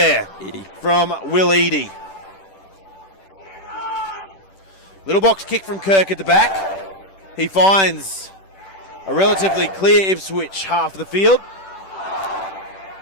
from Will Eadie. Little box kick from Kirk at the back. He finds a relatively clear Ipswich half of the field.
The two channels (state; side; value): late; right; 10 ms